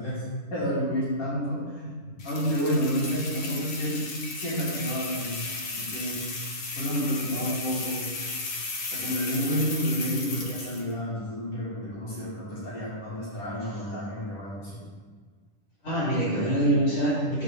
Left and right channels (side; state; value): right; late; 10 ms